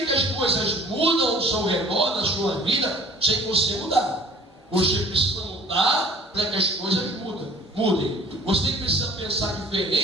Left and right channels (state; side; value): normal; both; correlation 0.50